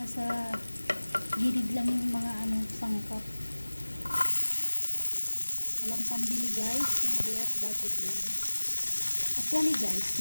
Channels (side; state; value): both; inverted; correlation -1.00